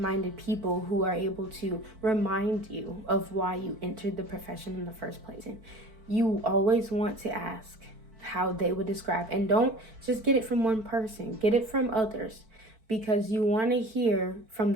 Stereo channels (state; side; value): late; left; 4.5 ms